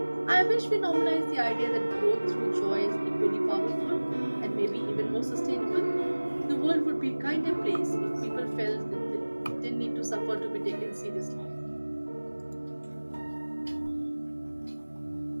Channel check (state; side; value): inverted; both; correlation -1.00